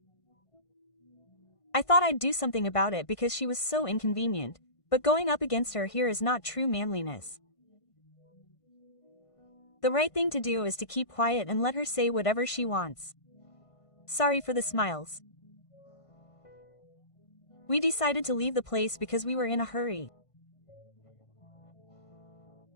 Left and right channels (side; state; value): right; late; 1.5 ms